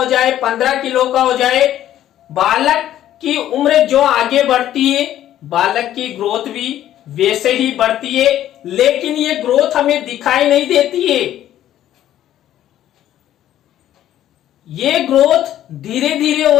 जाए, 15 किलो का हो जाए। बालक की उम्र जो आगे बढ़ती है बालक की ग्रोथ भी वैसे ही बढ़ती है, लेकिन ये ग्रोथ हमें दिखाई नहीं देती है। ये ग्रोथ धीरे धीरे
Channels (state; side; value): quieter; right; 12.2 dB